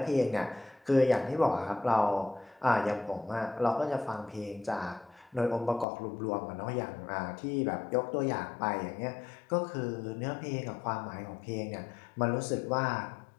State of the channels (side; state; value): right; drops out; at 5.9 s